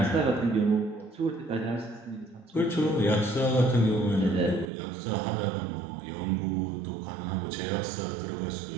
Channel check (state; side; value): drops out; left; at 4.7 s